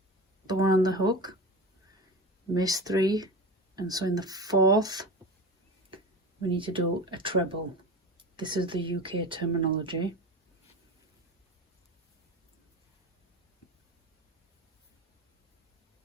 the one on the hook, miss 3, and so in the 4th we need to do a treble. This is the UK terminology.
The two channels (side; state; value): both; normal; correlation 0.28